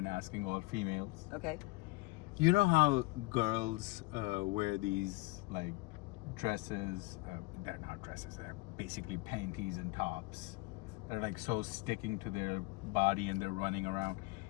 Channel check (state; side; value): quieter; right; 23.4 dB